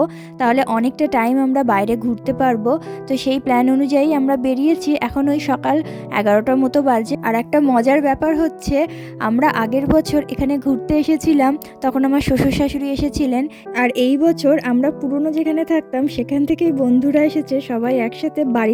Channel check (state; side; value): identical; both; correlation 1.00